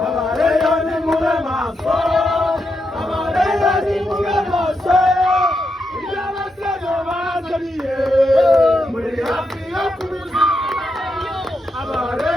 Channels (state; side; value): normal; both; correlation 0.83